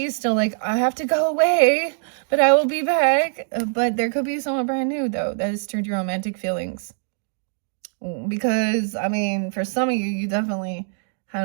still like, I have to go away, but I will be back. But there could be someone brand new though that has stirred your romantic feelings. Because, I mean, for some of you, you definitely had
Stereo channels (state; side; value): silent; left; digital silence